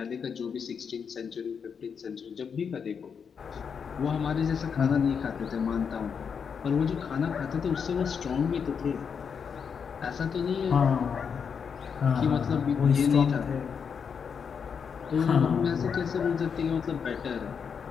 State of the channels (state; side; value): quieter; right; 6.6 dB